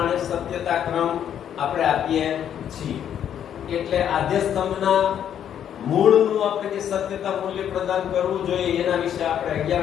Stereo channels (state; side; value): quieter; right; 9.5 dB